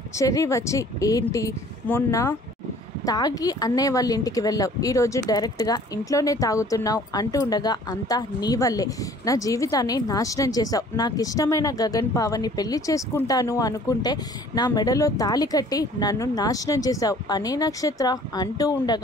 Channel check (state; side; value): normal; both; correlation 0.53